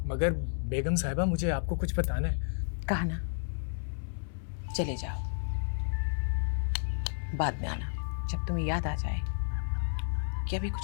मगर बेगम साहिबा मुझे आपको कुछ बताना है। कहा ना, चले जाओ, बाद में आना जब तुम्हें याद आ जाए कि अभी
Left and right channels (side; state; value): right; silent; 57 dB below the other